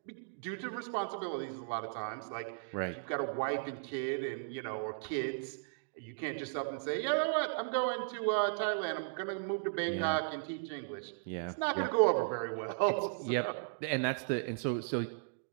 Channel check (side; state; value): left; silent; digital silence